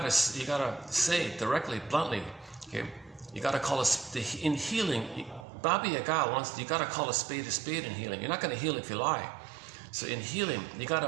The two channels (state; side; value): drops out; left; at 5.5 s